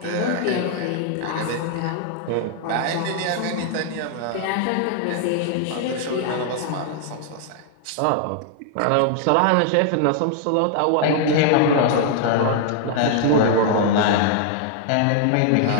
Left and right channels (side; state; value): both; different; correlation 0.00